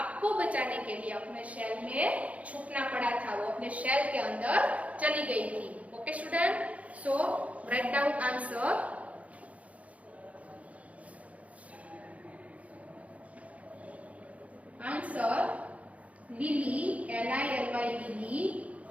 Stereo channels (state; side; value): late; left; 0.067 ms